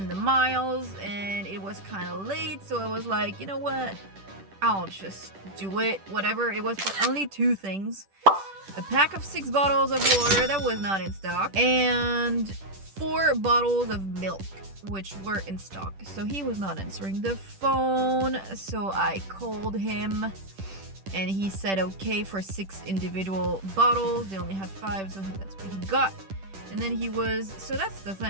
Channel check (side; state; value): left; late; 10 ms